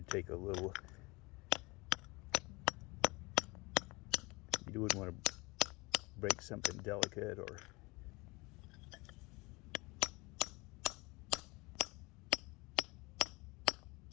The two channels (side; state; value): right; quieter; 24.8 dB